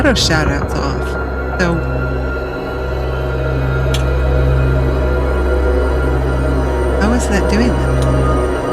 shoutouts off. So how is that doing that?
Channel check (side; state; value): both; identical; correlation 1.00